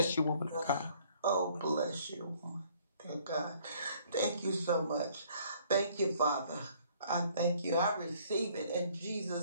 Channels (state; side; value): inverted; both; correlation -0.60